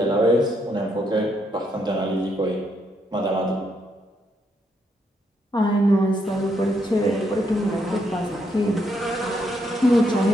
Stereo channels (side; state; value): both; normal; correlation 0.76